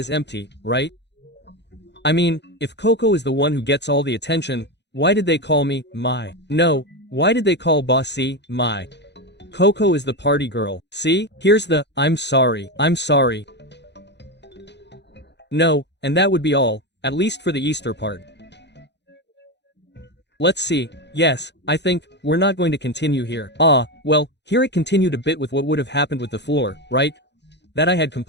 empty, right? I mean, if Coco is the one who gets all the attention, why did they call me, my? No, why did they call Bossy, my? Coco is the party girl, see? Here's the, I'm sorry. No, and that would be all, at least for the Easter part. Let's see, yes, I think, we're not going to continue here. Well, here it continued a bit with what would have happened with the floor, right? That I had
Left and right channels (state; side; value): late; right; 0.50 ms